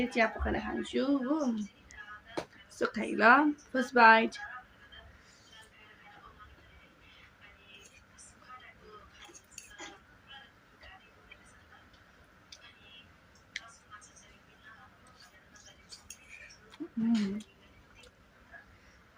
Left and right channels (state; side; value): identical; both; correlation 1.00